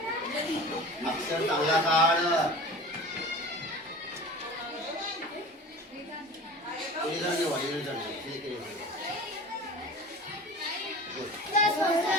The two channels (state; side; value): normal; both; correlation 0.37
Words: अक्षर चांगला काढ. इरेजर निवड, इरेजर निवड.